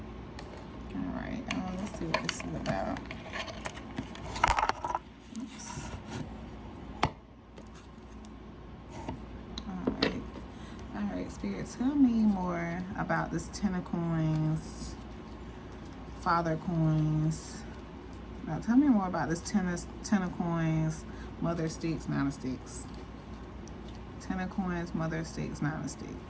All right, let's see what this is about. Oops. All right, Spirit, tell me more about this Ten of Coins, Father Coins. Now, tell me more about this Ten of Coins, Mother of Sticks, Nine of Sticks. Ten of Coins, Mother of Sticks, Nine of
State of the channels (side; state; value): both; identical; correlation 1.00